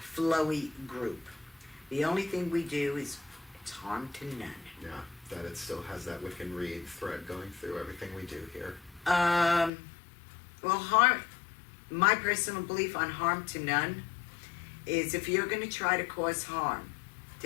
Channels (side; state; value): right; drops out; at 9.7 s